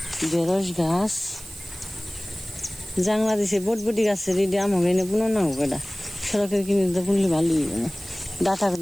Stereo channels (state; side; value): noise; right; hiss, 16 dB below the sound